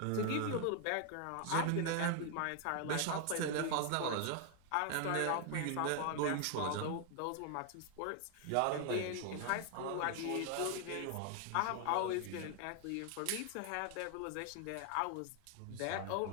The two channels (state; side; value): different; both; correlation 0.00